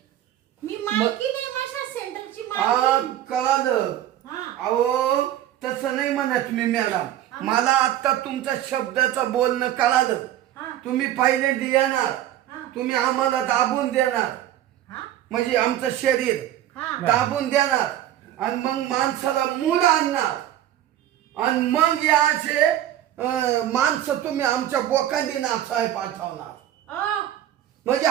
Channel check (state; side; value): quieter; left; 12.2 dB